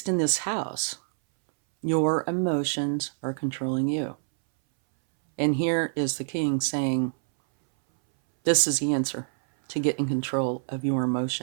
in this house, your emotions are controlling you. And here is the king saying, this is the answer to get in control of your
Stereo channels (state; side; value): silent; left; 60 dB below the other